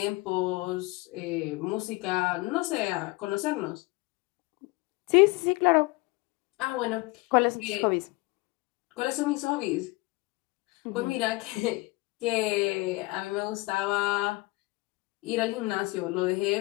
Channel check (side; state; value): right; quieter; 23.2 dB